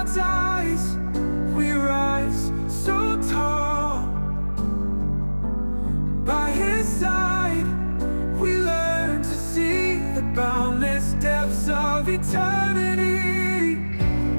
eyes, we rise so tall. By His side, we learn to see the boundless depths of eternity.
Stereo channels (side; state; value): both; inverted; correlation -1.00